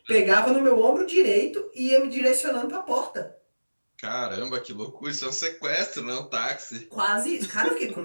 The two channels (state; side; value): inverted; both; correlation -1.00